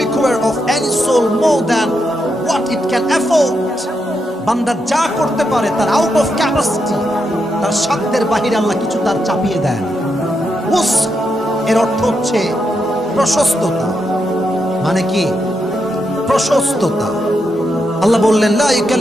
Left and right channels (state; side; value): normal; both; correlation 0.83